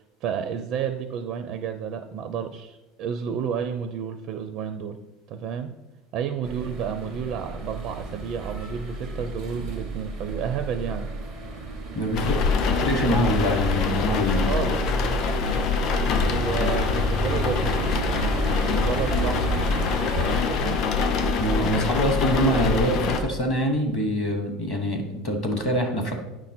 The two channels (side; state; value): both; normal; correlation 0.40